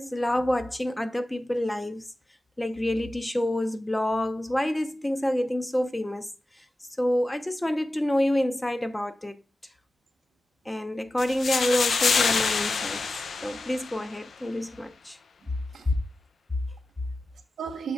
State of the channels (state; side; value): normal; both; correlation 0.94